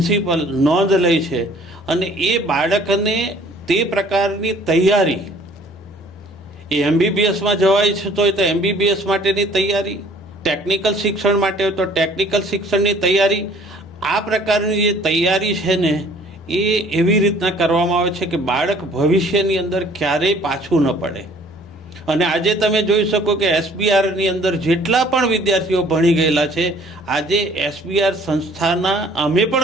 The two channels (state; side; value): normal; both; correlation 0.55